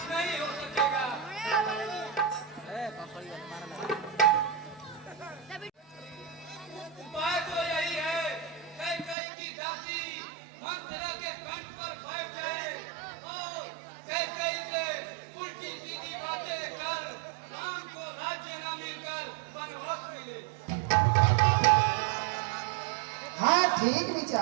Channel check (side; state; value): left; drops out; at 9.2 s